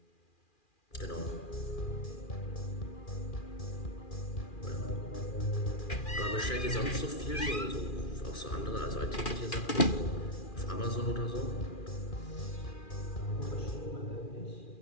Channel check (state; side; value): late; right; 2.4 ms